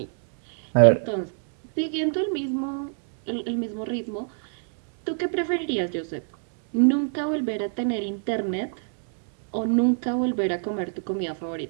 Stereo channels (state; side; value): silent; left; 61 dB below the other